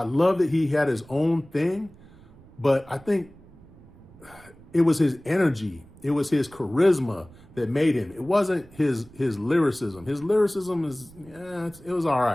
love that he had his own thing, but I think it was his energy. It was his charisma that made him. It wasn't his lyricism. His lyricism it was all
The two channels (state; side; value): noise; right; rumble, 23 dB below the sound